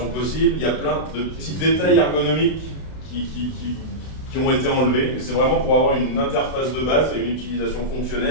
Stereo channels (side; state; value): right; late; 32 ms